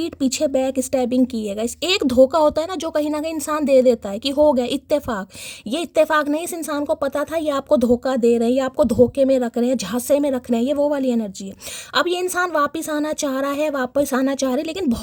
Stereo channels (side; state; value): both; identical; correlation 1.00